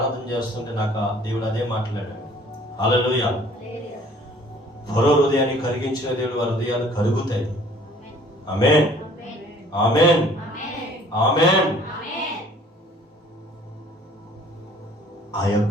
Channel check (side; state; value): both; normal; correlation 0.54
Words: చేస్తుంటే నాకు దేవుడు అదే మాట్లాడాడు. హల్లెలూయా. ఫరో హృదయాన్ని కరిగించిన దేవుడు వారి హృదయాలు కరుగుతాయి. ఆమేన్, ఆమేన్, ఆమేన్. ఆ